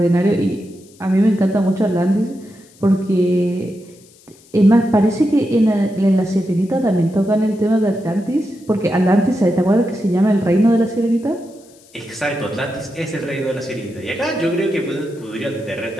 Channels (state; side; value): noise; left; hiss, 27 dB below the sound